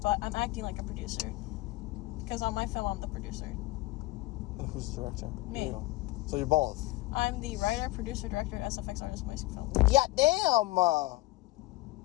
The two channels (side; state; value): right; quieter; 19.3 dB